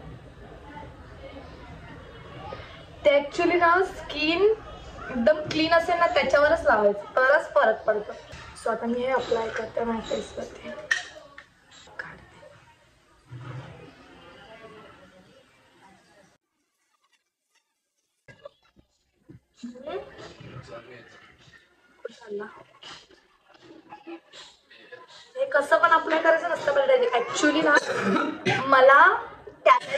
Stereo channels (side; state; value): both; identical; correlation 1.00